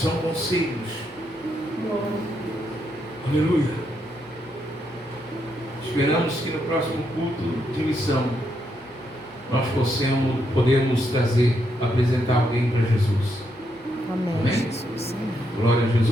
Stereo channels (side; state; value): both; normal; correlation 0.79